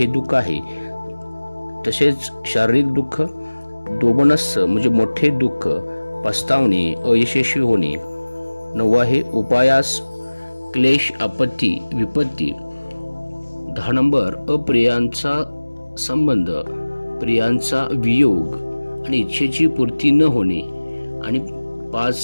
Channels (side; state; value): both; inverted; correlation -1.00